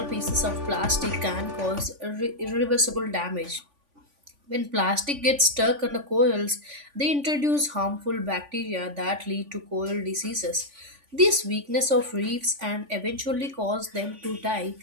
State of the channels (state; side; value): late; left; 3.5 ms